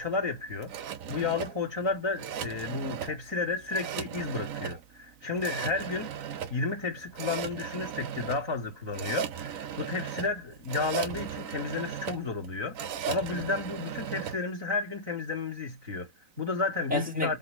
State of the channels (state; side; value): late; left; 3.9 ms